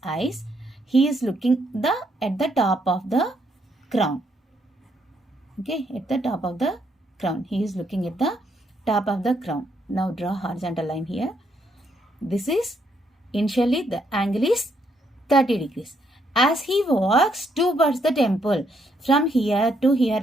eyes, he is looking at the top of the crown. Okay, at the top of the crown. He is looking at the top of the crown. Now draw horizontal line here. This is initially the angle is 30 degrees. As he walks towards the temple, from here to here,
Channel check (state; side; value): normal; both; correlation 0.74